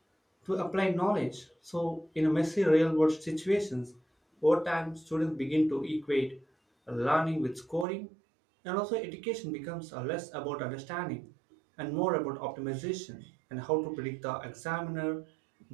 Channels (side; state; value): left; drops out; at 7.9 s